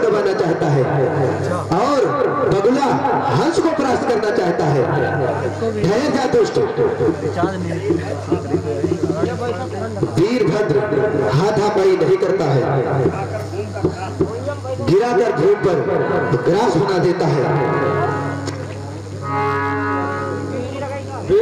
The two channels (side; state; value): both; identical; correlation 1.00